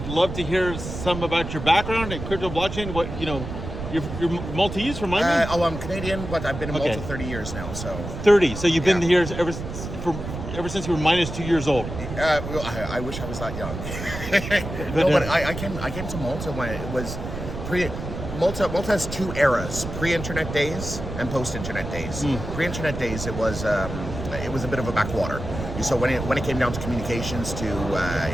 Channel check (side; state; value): right; noise; rumble, 7 dB below the sound